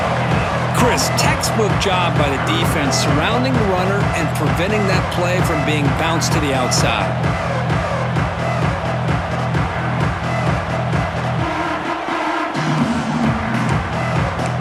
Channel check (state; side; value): identical; both; correlation 1.00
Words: Chris, textbook job by the defense surrounding the runner and preventing that play from being bounced to the outside.